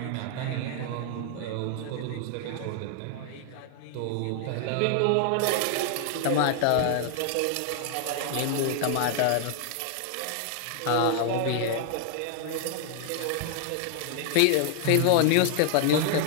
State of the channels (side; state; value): both; different; correlation 0.00